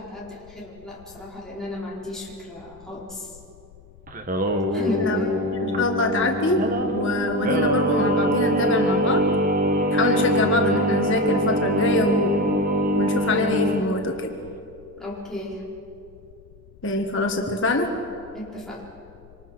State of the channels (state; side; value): noise; left; rumble, 25 dB below the sound